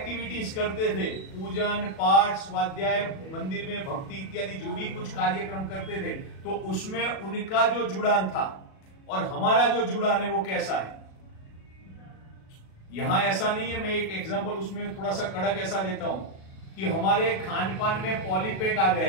करते थे, पूजन पाठ स्वाध्याय मंदिर में भक्ति इत्यादि जो भी कुछ कार्यक्रम करते थे, तो उसमें उनका जो जुड़ान था और हमारा जो जुड़ान है वो कैसा है। यहां ऐसा नहीं है। मैं एक एग्जांपल उसमें थोड़ा सा कड़क ऐसा देता हूं कि हमारे खान पान में पॉलीपैक आ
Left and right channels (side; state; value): right; late; 37 ms